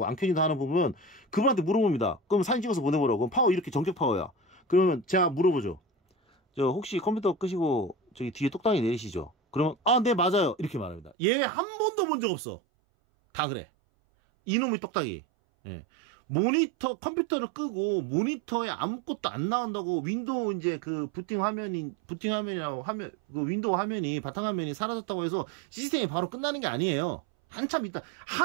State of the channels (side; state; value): left; drops out; at 11.2 s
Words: 안 켜진다 하는 부분은 그분한테 물어봅니다. 그럼 사진 찍어서 보내보라고. 그럼 파워 이렇게 정적 파워야. 그러면 제가 물어보죠. 혹시 컴퓨터 끄시고 저기 뒤에 똑딱이 내리시죠? 그러면 네 맞아요 이렇게 말합니다. 얘 한 번도 본 적 없어. 다 그래. 이놈의 똑딱이. 컴퓨터를 끄고 모니터에 아무것도 안 나온다고 윈도우 이제 그 부팅화면이라고 그 윈도우 화면이 바탕화면이 사라졌다고 해서 시스템이 바로 끝나는 게 아니에요. 한참 있다.